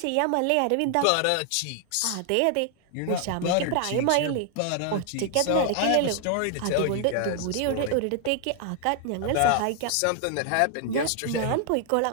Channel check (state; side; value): different; both; correlation 0.00